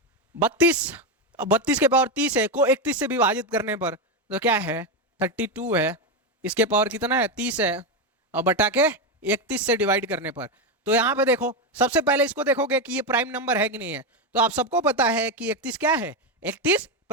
32 के पावर 30 है, को 31 से विभाजित करने पर तो क्या है 32 है, इसके पावर कितना है 30 है, और बटा के 31 से डिवाइड करने पर। तो यहां पे देखो, सबसे पहले इसको देखोगे कि ये प्राइम नंबर है कि नहीं है। तो आप सबको पता है कि 31 क्या है, 31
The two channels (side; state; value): both; normal; correlation 0.10